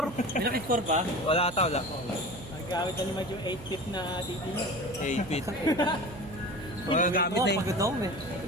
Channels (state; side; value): noise; right; hum, 14 dB below the sound